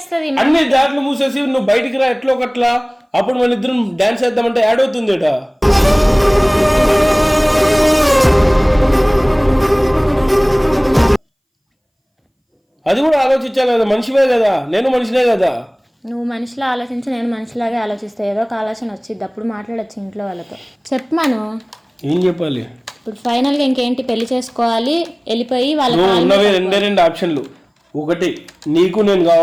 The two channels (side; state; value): both; identical; correlation 1.00